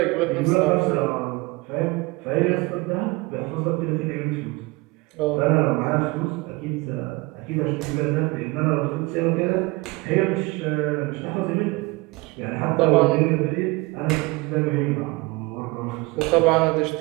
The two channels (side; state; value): left; quieter; 23.9 dB